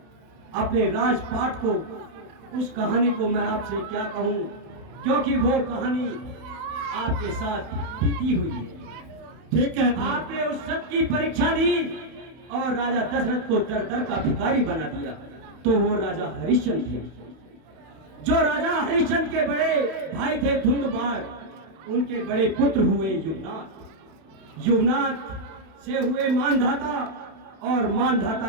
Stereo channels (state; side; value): late; left; 32 ms